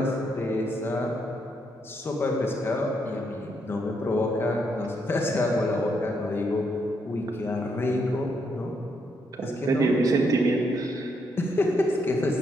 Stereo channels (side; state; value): both; normal; correlation 0.77